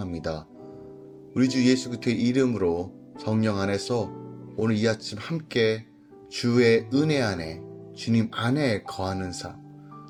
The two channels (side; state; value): both; identical; correlation 1.00